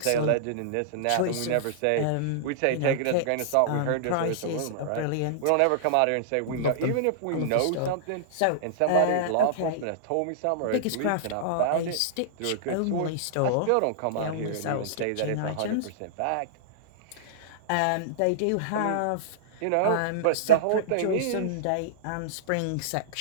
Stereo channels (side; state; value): both; different; correlation -0.02